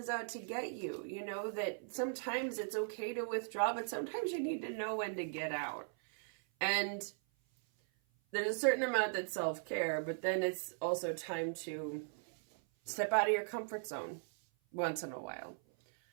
out to get you. That sometimes it's okay to withdraw, but sometimes you need to know when to get out. And there's a certain amount that's self-care, but then it's also time to step out of your comfort zone once in a while.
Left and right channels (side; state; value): left; silent; 52 dB below the other